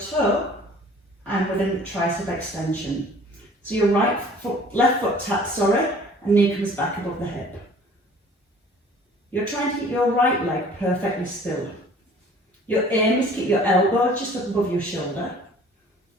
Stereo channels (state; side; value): normal; both; correlation 0.50